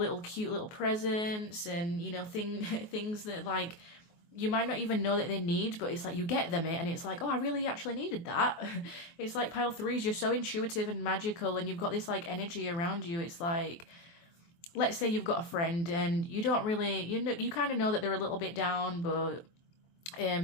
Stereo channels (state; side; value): late; right; 24 ms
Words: cute little presents and, you know, things that like you might not even know that they need, but it's like you get them it and it's like, oh, I really actually needed that. It's like pile 3s, you're so intuitive and magical, and you've got this like energy around you. It's like, let's say you've got a friend and you don't really, you kind of know that they're a little bit down, but